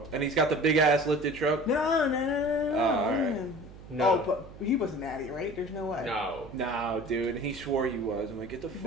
And he's got the big ass lifted truck. No. Alright. No. Oh, but he wasn't natty, right? There's no way. No, dude. And he swore he was. I'm like, get the fuck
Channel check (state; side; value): noise; right; hum, 17 dB below the sound